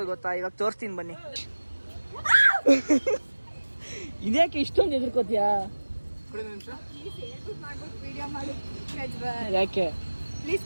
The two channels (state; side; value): inverted; both; correlation -1.00